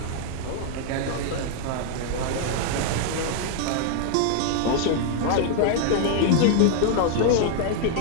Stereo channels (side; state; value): both; different; correlation 0.00